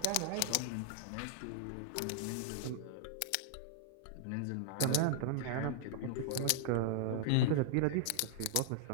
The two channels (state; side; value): different; both; correlation -0.01